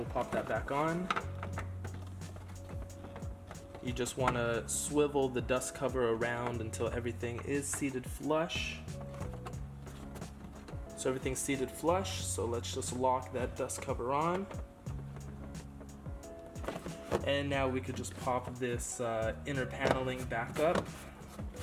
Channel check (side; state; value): both; identical; correlation 1.00